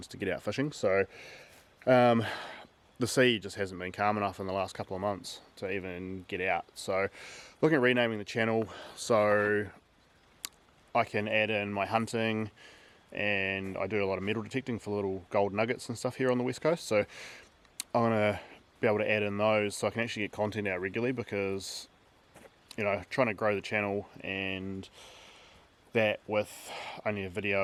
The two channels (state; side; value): identical; both; correlation 1.00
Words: to get out fishing. So the sea just hasn't been calm enough in the last couple of months to even get out. So looking at renaming the channel so I can add in my hunting, and I do a lot of metal detecting for little gold nuggets and stuff here on the west coast. So I'm going to be able to add in those so I can actually get content out regularly, because you know, trying to grow the channel and that with only a